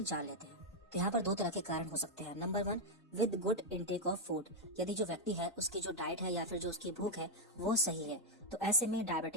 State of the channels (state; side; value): normal; both; correlation 0.00